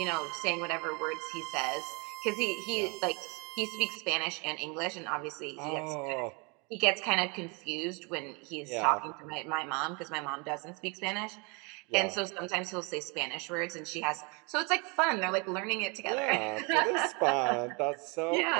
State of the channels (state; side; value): quieter; left; 31.0 dB